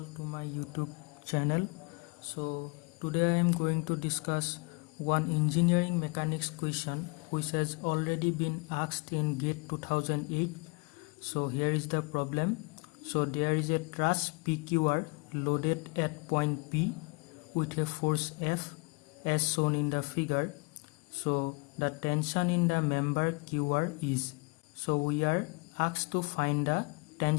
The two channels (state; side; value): quieter; right; 31.0 dB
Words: to my YouTube channel. So today I am going to discuss one engineering mechanics question which has already been asked in GATE 2008. So here is the problem. So there is a truss PQR loaded at point P with a force F as shown in the figure. So the tension in the member QR is. So we are asked to find the